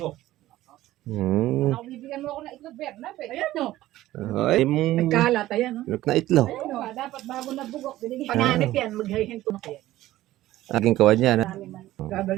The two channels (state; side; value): quieter; left; 15.4 dB